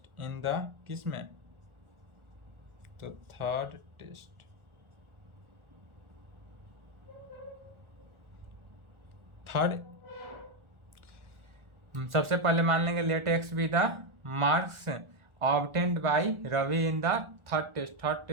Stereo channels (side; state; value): left; late; 1.4 ms